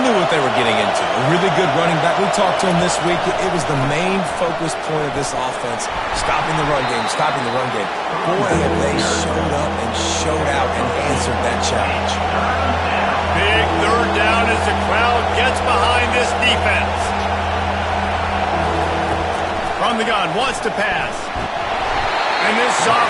what they were getting into. A really good running back. We talked to him this week. It was the main focus point of this offense. Stopping the run game, stopping the run game. Boy, have they showed up and showed out and answered that challenge. Big 3rd down as the crowd gets behind this defense. From the gun, wants to pass. And this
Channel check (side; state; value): both; identical; correlation 1.00